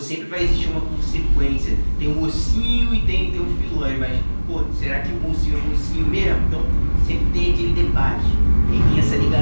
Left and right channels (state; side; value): inverted; both; correlation -1.00